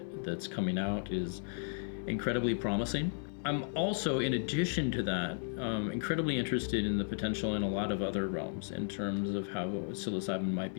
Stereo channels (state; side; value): silent; right; 55 dB below the other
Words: that's coming out is incredibly promising. I'm also, in addition to that, incredibly interested in the potential in a lot of other realms in terms of how psilocybin might